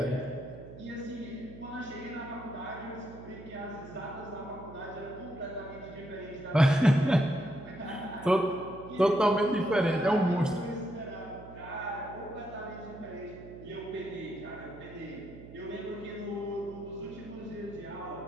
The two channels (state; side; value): noise; right; hum, 15 dB below the sound